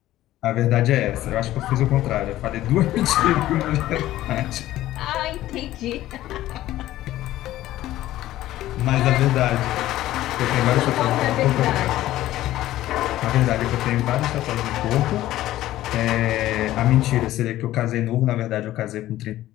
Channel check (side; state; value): right; quieter; 14.7 dB